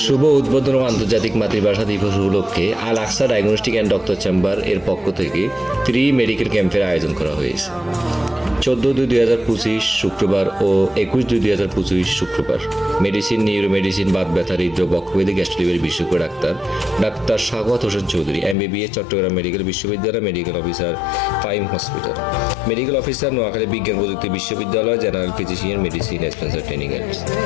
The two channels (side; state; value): right; drops out; at 18.6 s